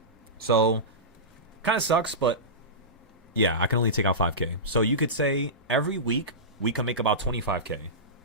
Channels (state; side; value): normal; both; correlation -0.18